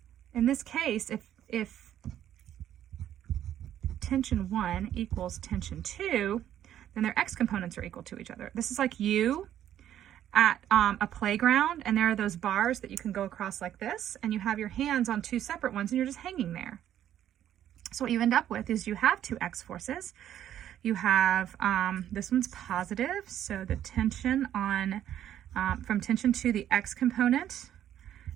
In this case, if tension 1 equals tension 2, then their x components are equal to each other. This is like you at a playground, and there are those bars that you can go across like this, and you have your hands on 2 separate ones, and you're just hanging there. So what you end up with is you have 2 x forces. You have, this one's positive, so the tension on, from tension 2, the x component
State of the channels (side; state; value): left; quieter; 11.1 dB